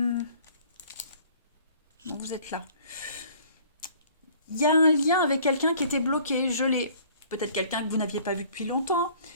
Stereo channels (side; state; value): both; inverted; correlation -0.54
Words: vous êtes là. Il y a un lien avec quelqu'un qui était bloqué, gelé. Peut-être quelqu'un que vous n'aviez pas vu depuis longtemps.